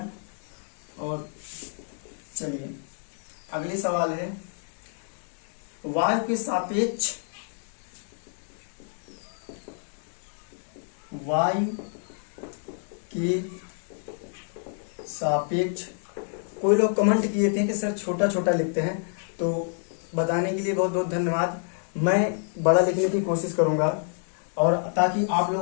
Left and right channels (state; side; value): silent; right; 59 dB below the other